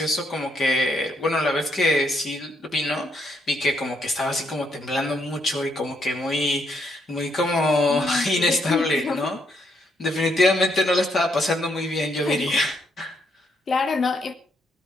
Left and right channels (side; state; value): both; normal; correlation 0.74